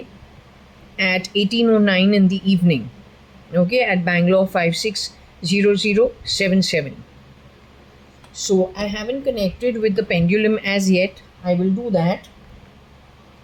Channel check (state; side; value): identical; both; correlation 1.00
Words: at 18:09 in the evening. Okay, at Bangalore 560077. So I haven't connected with the pendulum as yet. I will do that.